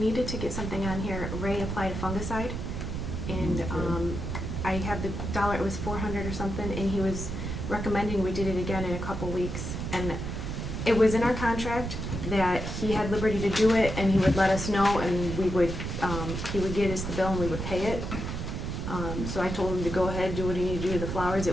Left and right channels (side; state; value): right; noise; rumble, 4 dB below the sound